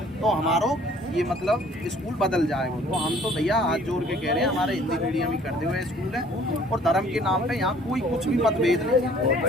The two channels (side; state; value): both; normal; correlation 0.55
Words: तो हमारो ये मतलब स्कूल बदल जाएगा। तो हम तो भैया हाथ जोड़ के कह रहे हैं, हमारे हिंदी मीडियम ही करते हुए स्कूल है, और धर्म के नाम पे यहाँ कोई कुछ भी मतभेद नहीं,